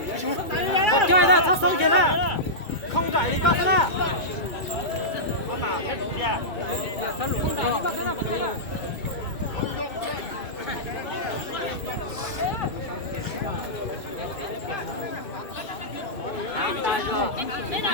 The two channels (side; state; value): right; late; 2.3 ms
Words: một chơi ra thắt sông kia ra không chạy đi cắt ra